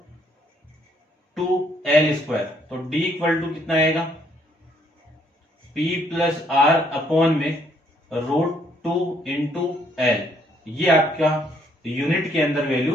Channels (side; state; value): both; normal; correlation 0.68